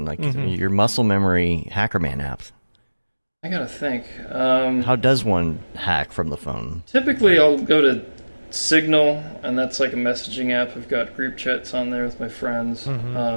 Like your muscle memory Hackerman app? I gotta think. How does one hack from the phone? Typically, I'll go to Signal, and that's like a messaging app. I've got group chats on there with my friends,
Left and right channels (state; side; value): inverted; both; correlation -1.00